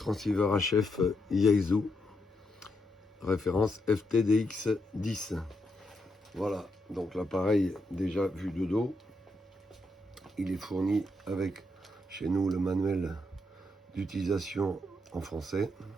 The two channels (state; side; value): normal; both; correlation 0.80